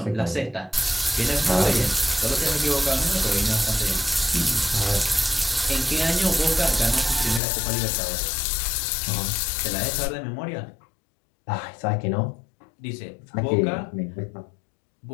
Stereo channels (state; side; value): drops out; right; at 7.4 s